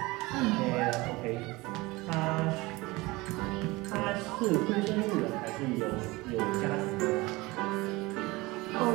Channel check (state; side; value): quieter; left; 22.1 dB